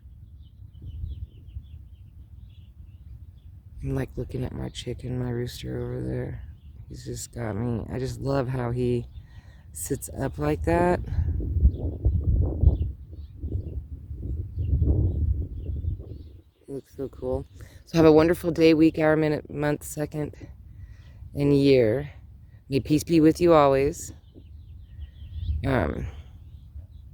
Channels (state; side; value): identical; both; correlation 1.00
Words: I'm like looking at my chicken, my rooster over there. He's just got me. I just love how he sits up like that. He looks so cool. So have a wonderful day, week, hour, minute, month, second, and year. May peace be with you always. I'm